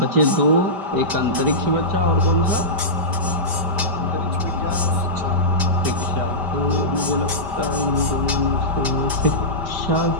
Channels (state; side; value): late; left; 5.1 ms